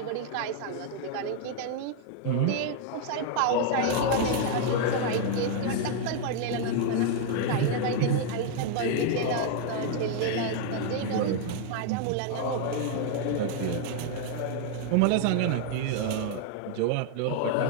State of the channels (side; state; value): both; different; correlation 0.00